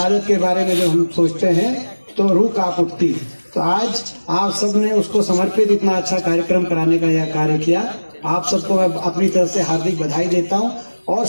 के बारे में जब हम सोचते हैं तो रूह कांप उठती। तो आज आप सब ने उसको समर्पित इतना अच्छा कार्यक्रम कराने का यह कार्य किया, आप सबको मैं अपनी तरफ से हार्दिक बधाई देता हूं। और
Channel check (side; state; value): both; inverted; correlation -1.00